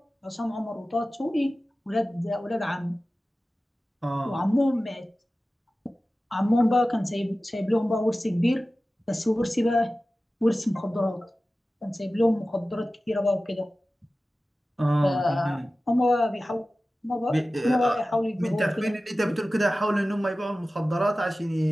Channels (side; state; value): both; normal; correlation 0.95